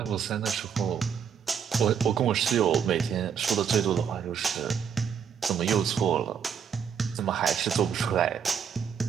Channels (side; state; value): left; quieter; 7.5 dB